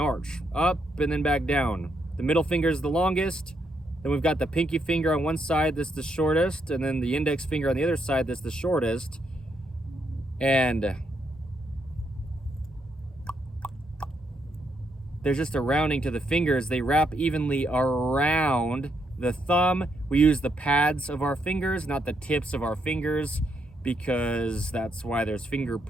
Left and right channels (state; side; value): normal; both; correlation 0.77